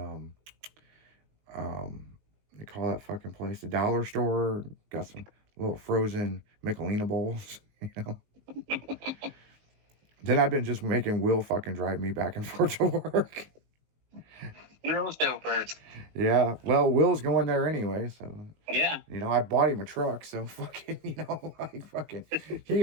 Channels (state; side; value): late; left; 19 ms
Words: they call that fucking place the dollar store. Got some little frozen Michelina bowls, you know. Then I've been just making Will fucking drive me back and forth to work. Will's doper. Yeah, well, Will's going there anyway, so yeah. You know, I bought him a truck, so fucking, you know, like fucking,